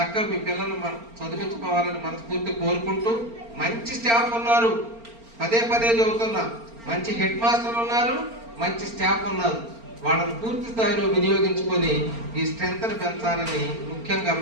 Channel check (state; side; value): late; left; 4.4 ms